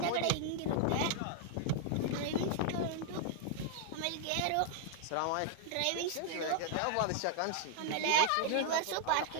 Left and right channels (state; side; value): different; both; correlation -0.01